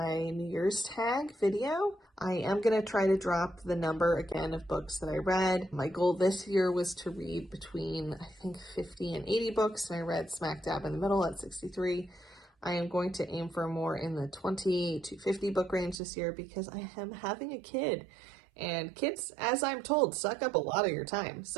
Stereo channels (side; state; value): left; drops out; at 16.0 s